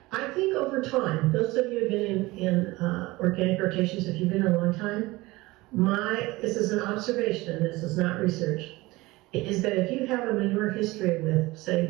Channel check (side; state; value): left; quieter; 20.8 dB